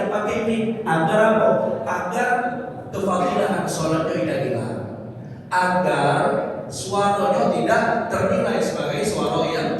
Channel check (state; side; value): identical; both; correlation 1.00